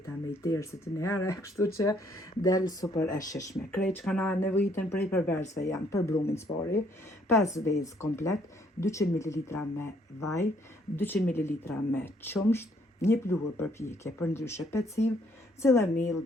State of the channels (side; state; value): both; normal; correlation 0.66